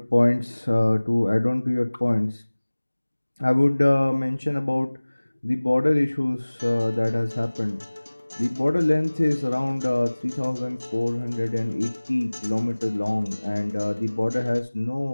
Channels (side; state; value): both; inverted; correlation -1.00